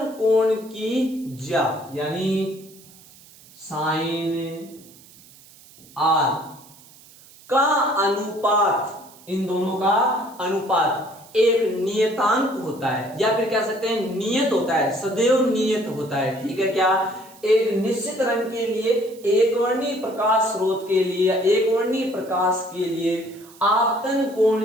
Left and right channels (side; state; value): right; noise; hiss, 23 dB below the sound